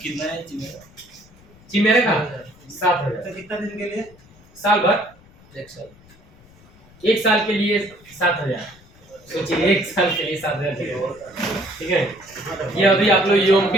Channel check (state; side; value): noise; left; rumble, 26 dB below the sound